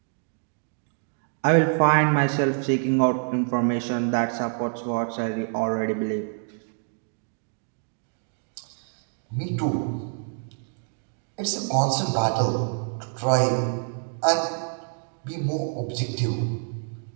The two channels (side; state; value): left; silent; 60 dB below the other